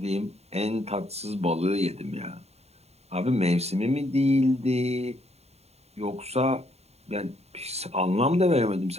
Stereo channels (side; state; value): left; late; 0.31 ms